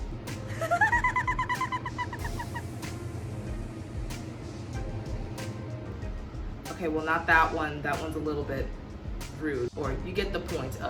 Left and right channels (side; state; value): both; identical; correlation 1.00